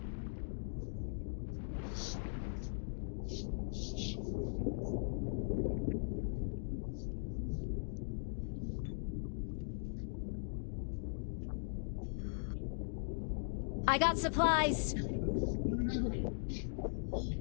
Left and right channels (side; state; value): right; silent; digital silence